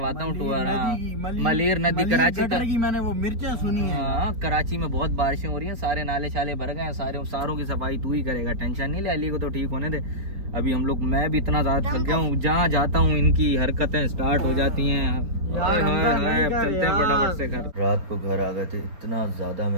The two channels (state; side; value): late; left; 4.3 ms